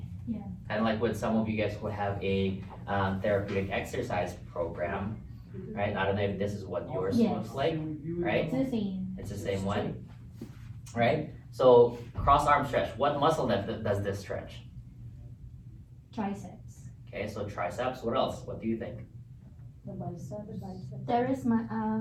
kind of like what some of you guys would have a therapeutic exercise program, right? I don't know if this is what yours looks like, right? It's the same. It's the same one, right? So cross arm stretch. What muscle does this stretch? Triceps. Okay, so triceps. What else? What do you think? The bicep. Teres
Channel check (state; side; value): identical; both; correlation 1.00